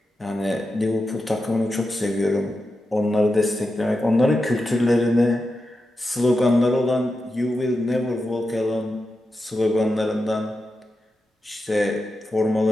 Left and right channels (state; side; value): normal; both; correlation 0.90